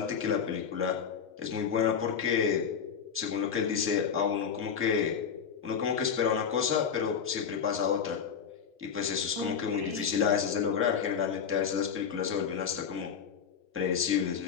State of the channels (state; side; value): quieter; right; 7.2 dB